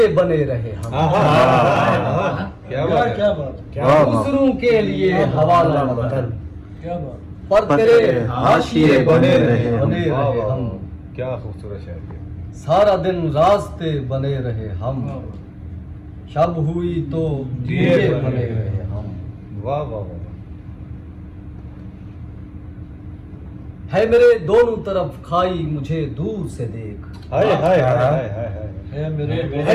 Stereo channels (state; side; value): identical; both; correlation 1.00